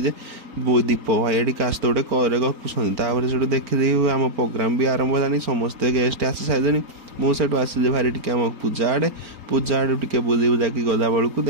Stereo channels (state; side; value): late; left; 4.4 ms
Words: दीप भाई काश गोटे करे गपुंट से देखी आम प्रोग्राम भी आरंभ होलानी समस्ते गेस्ट आसी सारे मुझे आसिले भारी टी आम पूजा आड़े टे बुली बुलाकी गला बेलू